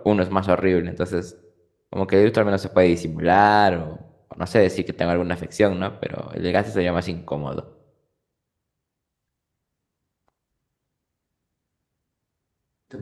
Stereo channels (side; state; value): both; identical; correlation 1.00